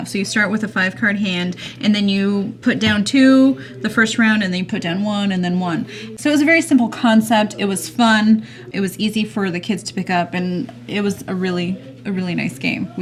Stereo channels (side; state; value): both; identical; correlation 1.00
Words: So you start with a 5-card hand and then you put down 2 the first round and then you put down 1 and then 1. So it was a very simple concept. It was fun. It was easy for the kids to pick up and it was a really nice game.